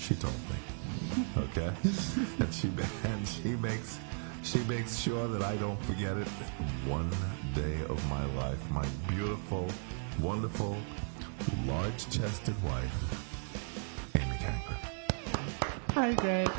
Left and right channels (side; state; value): left; silent; 54 dB below the other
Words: told me. Okay? and she makes sure that I don't forget it one day of my life. My beautiful, wonderful, large-chested wife, Amy Cankren. Hi, Greg.